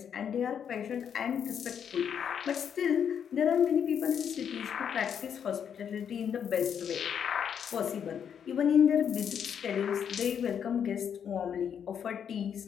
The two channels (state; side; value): quieter; right; 8.1 dB